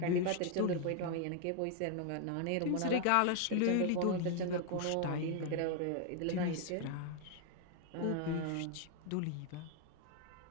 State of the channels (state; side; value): different; both; correlation 0.00